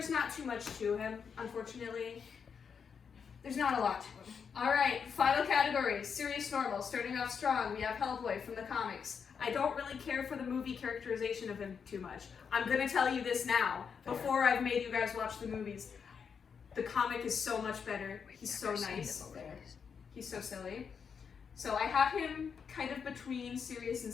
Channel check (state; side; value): quieter; right; 6.5 dB